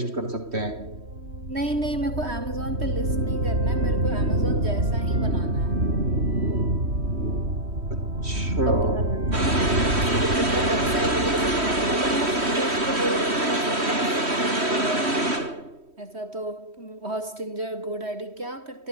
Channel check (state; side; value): late; left; 3.1 ms